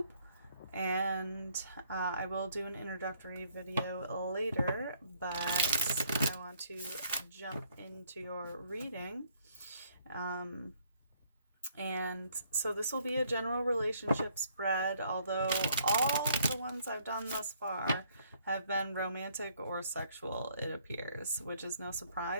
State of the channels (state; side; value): inverted; both; correlation -0.65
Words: and I will do an introductory video later, but I want to jump into your reading. And so this will be a general relationship spread, although all the ones I've done thus far have been romantic or sexual, it appears, which is no